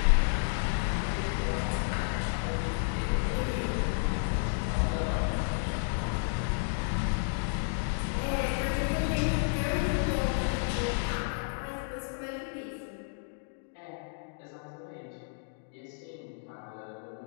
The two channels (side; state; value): right; silent; digital silence